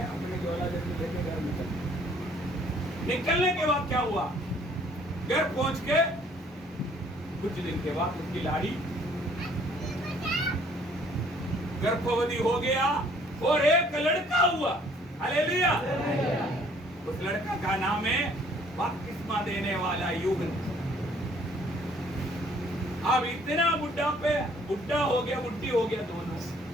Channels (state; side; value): normal; both; correlation 0.60